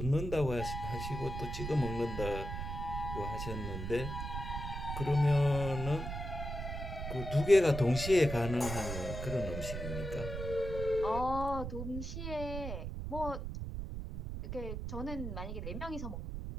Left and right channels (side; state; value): right; noise; rumble, 5 dB below the sound